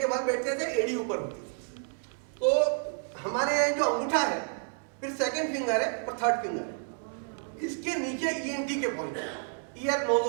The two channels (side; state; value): left; silent; 58 dB below the other